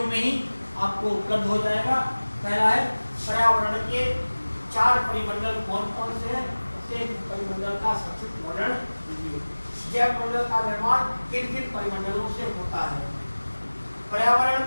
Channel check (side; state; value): both; inverted; correlation -1.00